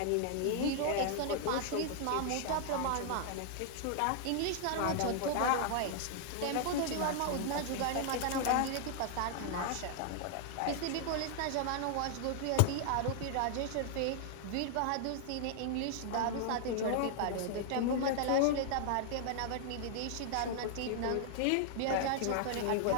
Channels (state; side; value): different; both; correlation 0.00